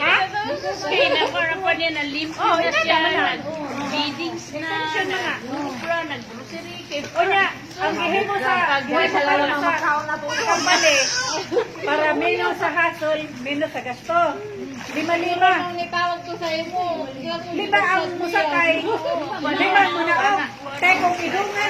to. Kaya nagkaroon pa niya na lymph Oh, na ina siya. naman. Feedings na. Extension na nga. Nag-grocery, nag-grocery. O niya, ang gihimo sa company para menos sa hasol, menos sa gasto. 5,000. Ang itawag ko sa imo. Lima ang musakay. Lima mo na o. Kaya kung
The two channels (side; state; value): both; identical; correlation 1.00